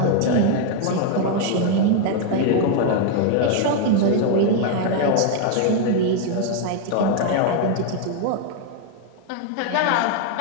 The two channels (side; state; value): both; different; correlation 0.01